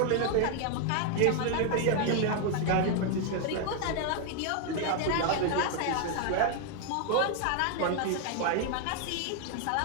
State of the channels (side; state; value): both; different; correlation 0.00